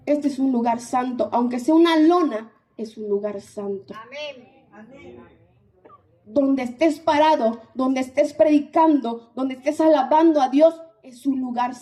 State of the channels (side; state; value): both; identical; correlation 1.00